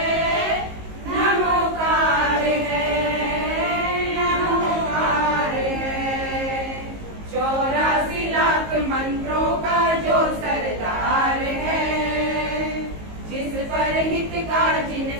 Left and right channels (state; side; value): late; left; 19 ms